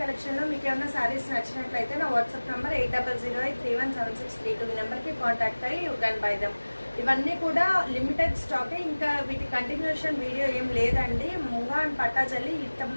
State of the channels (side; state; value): both; inverted; correlation -1.00